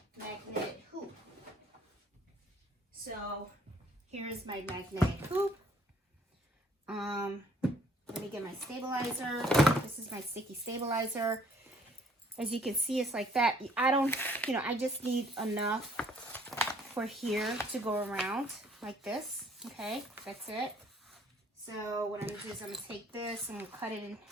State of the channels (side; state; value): both; normal; correlation 0.60